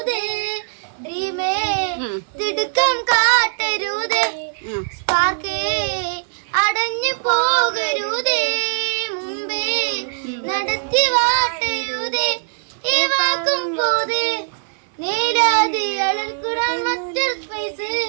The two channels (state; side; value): silent; left; digital silence